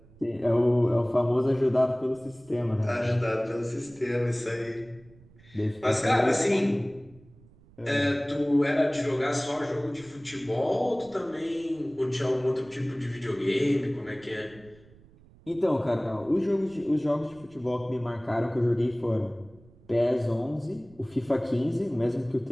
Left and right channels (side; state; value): right; noise; rumble, 26 dB below the sound